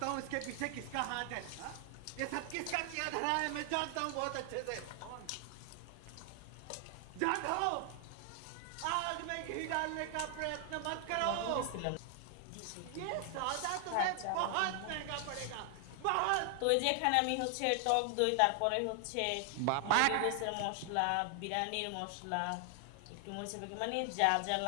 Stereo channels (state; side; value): different; both; correlation 0.00